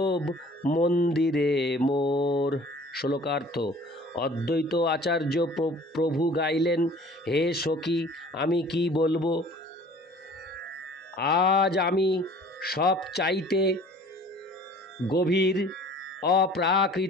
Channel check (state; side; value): normal; both; correlation 0.49